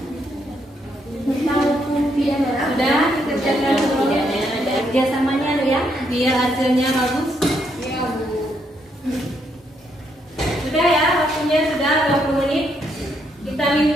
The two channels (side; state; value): both; normal; correlation 0.75